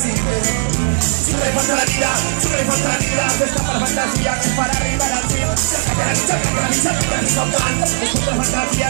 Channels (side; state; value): left; silent; digital silence